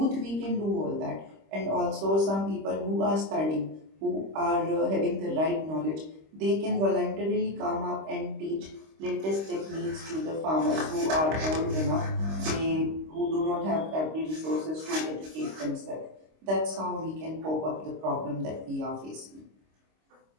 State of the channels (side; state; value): left; late; 26 ms